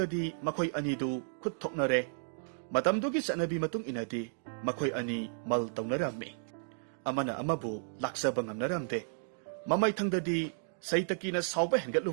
makoy anidu kutok nare, Matamdugi sa nabi matung inadi, Makoy ani mal taong narami. Amana amabu laksa bangam naramde. Mamay tangdadi Saitaki na sauba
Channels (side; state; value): left; silent; digital silence